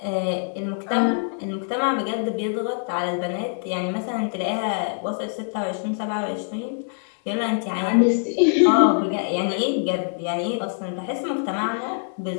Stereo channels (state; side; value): silent; right; 58 dB below the other